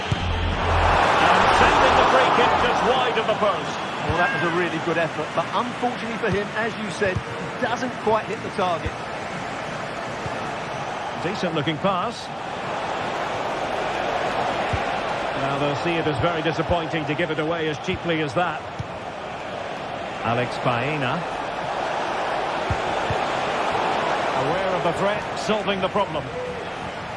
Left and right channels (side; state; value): both; identical; correlation 1.00